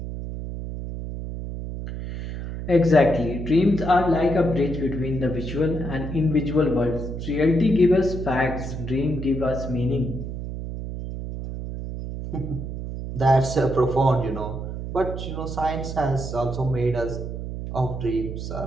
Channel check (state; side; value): noise; right; hum, 6 dB below the sound